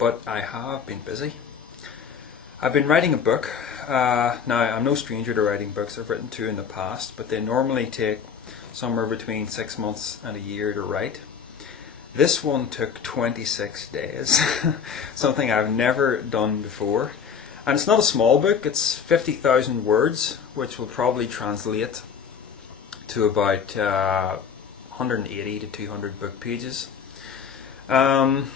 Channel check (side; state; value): right; quieter; 6.9 dB